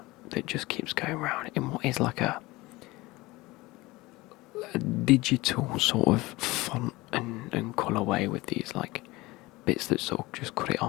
that just keeps going around in what is like a digital sort of font and colourway with these like bits that sort of just cut it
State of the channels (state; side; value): quieter; right; 20.9 dB